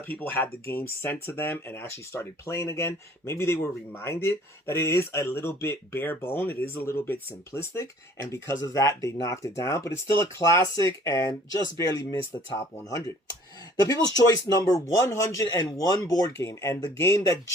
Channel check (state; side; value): normal; both; correlation 0.54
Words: people had the game sent to them and actually started playing again, maybe they were reminded that it is a little bit bare bone. It is a little bit simplistic. And because of that, they knocked it down. But it's still a classic and just barely missed the top 100. The People's Choice number 101 board game, and the game that